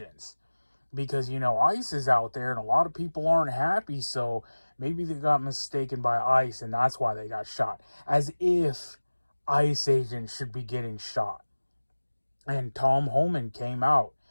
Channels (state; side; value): inverted; both; correlation -1.00